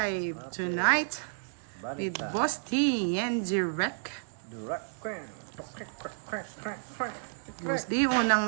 tonight with Boss T and Direct. Boss D,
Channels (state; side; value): silent; left; digital silence